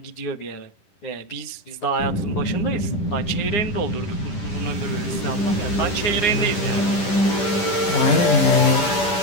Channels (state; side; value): late; right; 10 ms